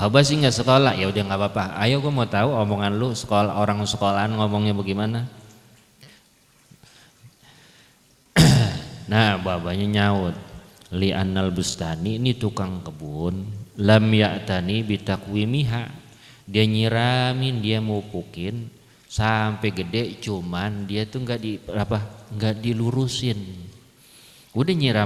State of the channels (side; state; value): both; identical; correlation 1.00